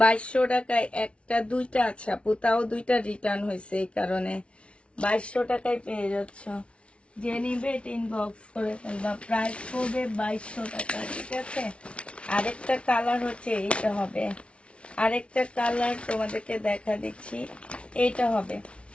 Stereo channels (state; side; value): late; right; 0.060 ms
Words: 2200 টাকায় একটা দুইটা, আচ্ছা পুতাও দুইটা রিটার্ন হয়েছে, এই কারণে 2200 টাকায় পেয়ে যাচ্ছ। যে নিবে এটা ইনবক্স করে ফেলবা। প্রাইস পড়বে 2200 টাকা। ঠিক আছে, আরেকটা কালার হচ্ছে এইটা হবে, আরেকটা কালার তোমাদেরকে দেখা দিচ্ছি, এইটা হবে।